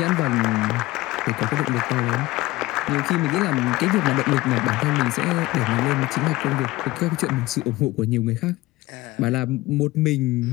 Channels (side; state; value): right; quieter; 19.1 dB